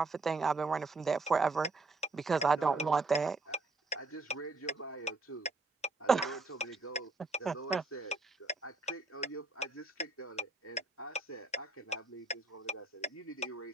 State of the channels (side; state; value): left; quieter; 3.4 dB